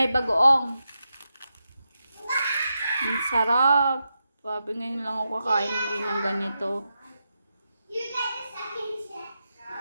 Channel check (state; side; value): inverted; both; correlation -0.87